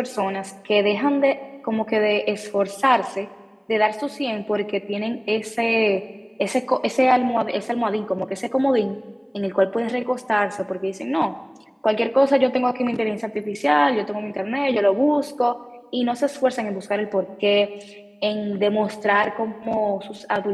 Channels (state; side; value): identical; both; correlation 1.00